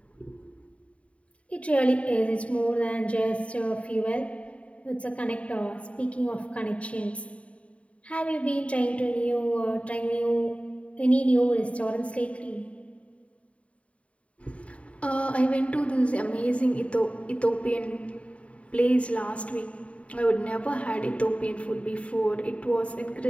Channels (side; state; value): right; late; 0.064 ms